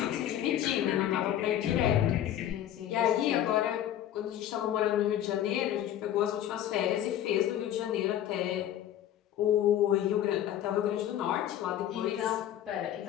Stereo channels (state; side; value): quieter; right; 11.4 dB